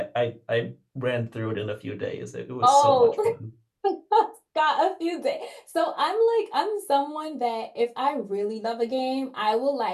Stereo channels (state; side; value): identical; both; correlation 1.00